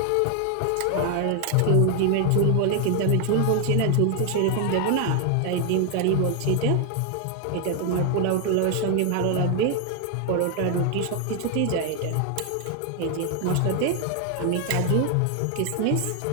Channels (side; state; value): both; different; correlation 0.00